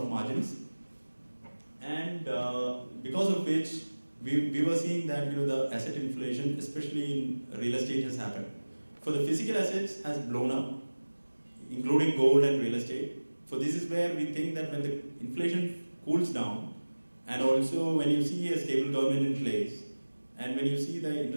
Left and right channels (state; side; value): inverted; both; correlation -1.00